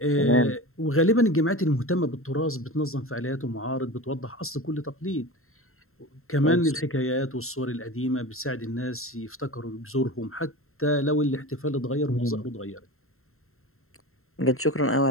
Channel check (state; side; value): late; right; 0.62 ms